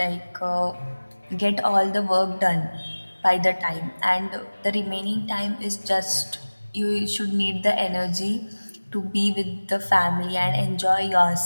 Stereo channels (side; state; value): both; inverted; correlation -1.00